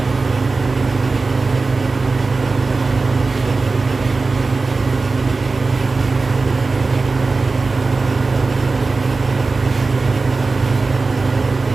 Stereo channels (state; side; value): quieter; left; 3.9 dB